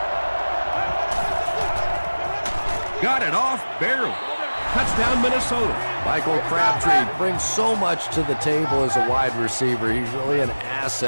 Got it off barely. Touchdown, Minnesota. Michael Crabtree brings so much to the table as a wide receiver. He's really an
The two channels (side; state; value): both; inverted; correlation -1.00